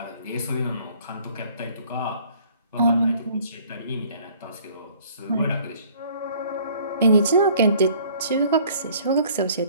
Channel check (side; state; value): both; inverted; correlation -0.56